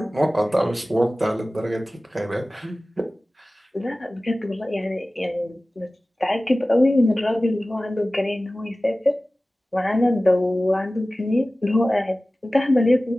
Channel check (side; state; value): both; normal; correlation 0.97